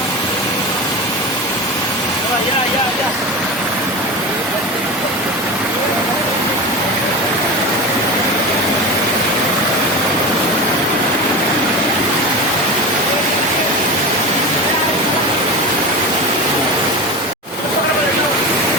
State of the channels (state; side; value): normal; both; correlation 0.26